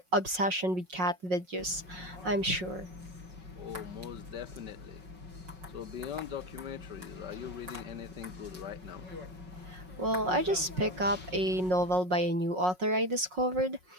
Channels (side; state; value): left; late; 5.5 ms